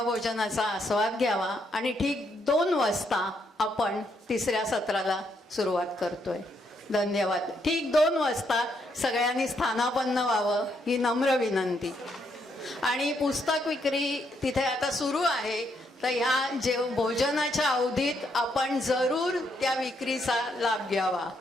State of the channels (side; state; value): both; normal; correlation 0.75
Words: आस्वाद घ्यावा आणि ठीक 2 वाजता आपण 3ऱ्या सत्राला सुरुवात करतोय. धन्यवाद. ठीक 2 वाजता सगळ्यांनी स्थानापन्न व्हावं ही नम्र विनंती. आणि पुस्तक विक्री तिथे आता सुरू आहे, तर ह्या भोजनाच्या अवधीत आपण जरूर त्या विक्रीचा लाभ घ्यावा,